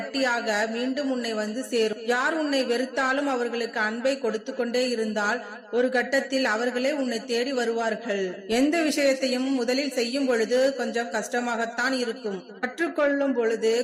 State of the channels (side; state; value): both; identical; correlation 1.00